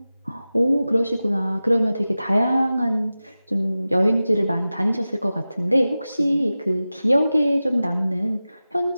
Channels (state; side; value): inverted; both; correlation -0.95